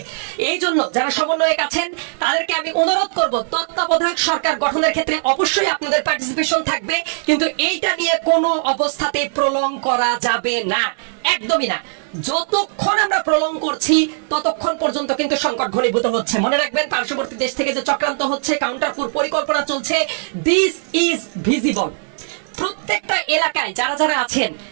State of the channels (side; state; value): left; silent; digital silence